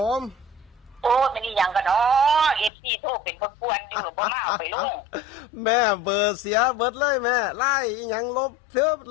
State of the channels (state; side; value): drops out; right; at 2.7 s